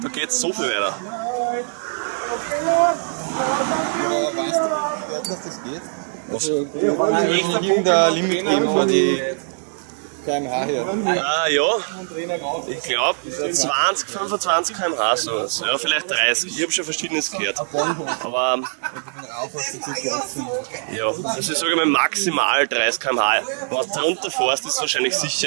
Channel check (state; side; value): silent; left; digital silence